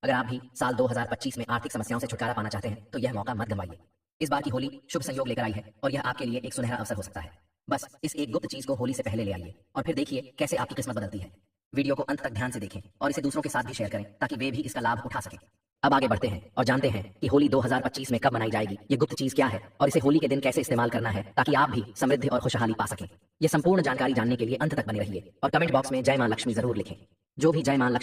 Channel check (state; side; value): identical; both; correlation 1.00